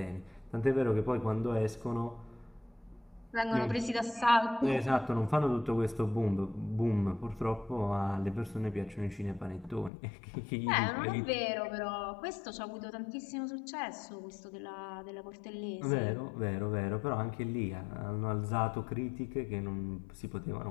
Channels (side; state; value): right; drops out; at 9.9 s